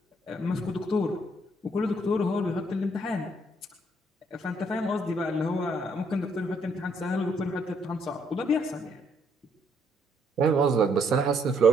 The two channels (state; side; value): normal; both; correlation 0.70